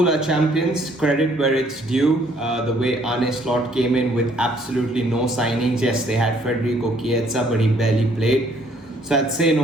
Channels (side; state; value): both; normal; correlation 0.64